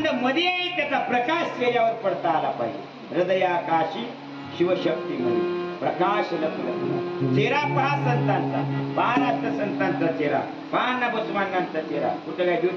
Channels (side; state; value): both; identical; correlation 1.00